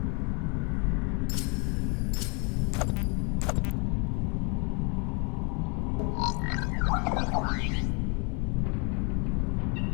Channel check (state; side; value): quieter; right; 33.7 dB